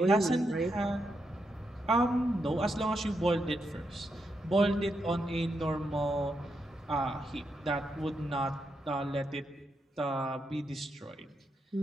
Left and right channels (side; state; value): both; normal; correlation 0.83